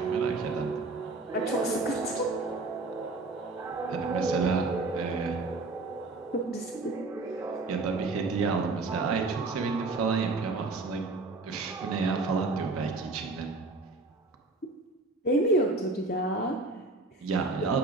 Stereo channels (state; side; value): quieter; left; 3.4 dB